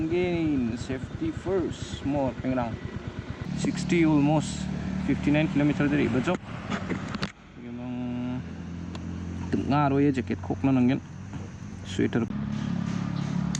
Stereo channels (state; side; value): identical; both; correlation 1.00